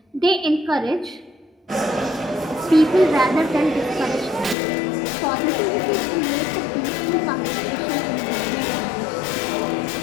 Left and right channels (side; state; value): right; drops out; at 4.5 s